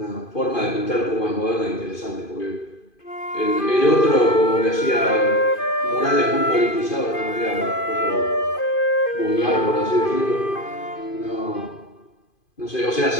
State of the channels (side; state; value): right; late; 2.5 ms